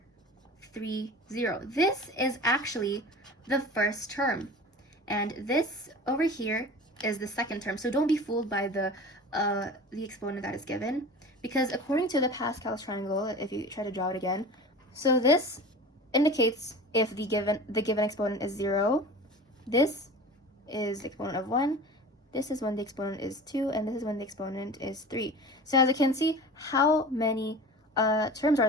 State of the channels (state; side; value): normal; both; correlation 0.36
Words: 3, 0. This is actually the first term, and this over here is the second term. So don't be fooled by the exponent that is given, because according to the Pascal's triangle, if you try to draw it again, so this indicates if the given exponent is 0, this is the exponent of 1, this is when the exponent is 2, and this is when the exponent is 3. So as you can see, how many terms